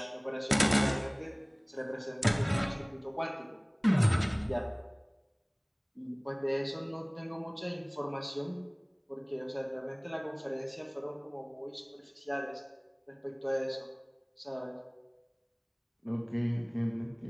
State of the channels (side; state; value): both; identical; correlation 1.00